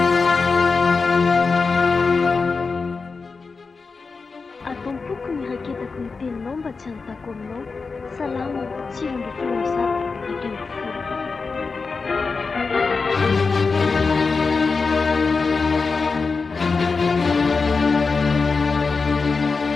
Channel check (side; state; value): right; quieter; 4.5 dB